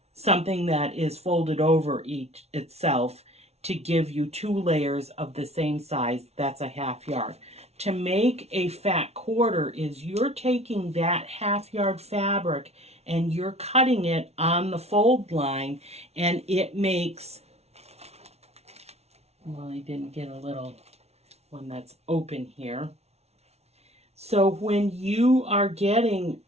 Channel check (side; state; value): left; late; 0.31 ms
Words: something that is folded over itself, to give you 2 layers of the same size. That's a half yard. To make a fat quarter is you're taking that half yard fabric and you're cutting it on the fold line, and it makes, well, I didn't get a little one that's open here. So when you are getting